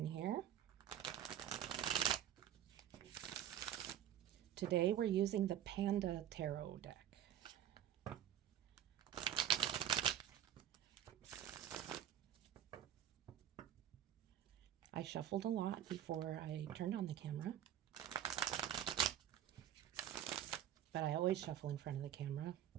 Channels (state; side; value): quieter; left; 10.7 dB